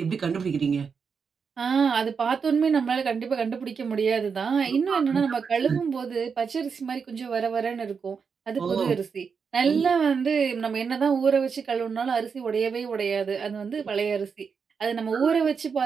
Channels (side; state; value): left; quieter; 5.9 dB